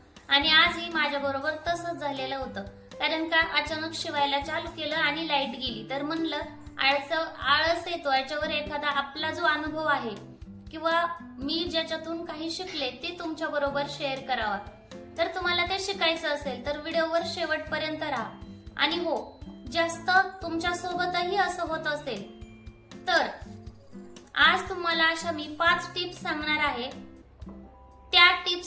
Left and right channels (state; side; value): identical; both; correlation 1.00